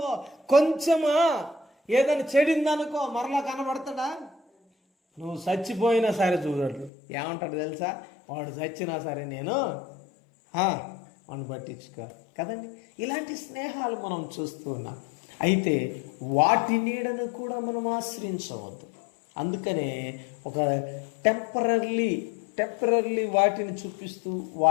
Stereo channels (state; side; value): drops out; right; at 6.9 s